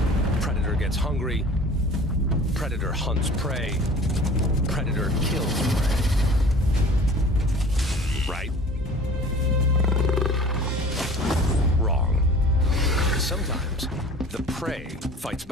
Predator gets hungry. Predator hunts prey. Predator kills prey. Right? Wrong. Sometimes the prey fights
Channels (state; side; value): normal; both; correlation 0.44